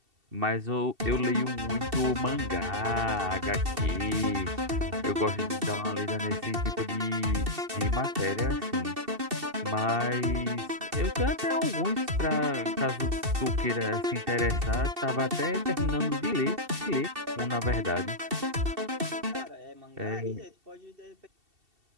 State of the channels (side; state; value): left; late; 2.7 ms